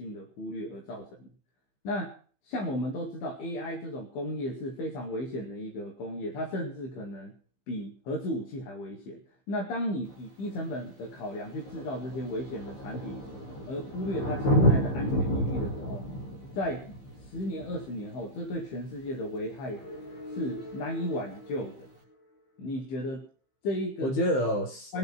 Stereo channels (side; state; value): right; late; 15 ms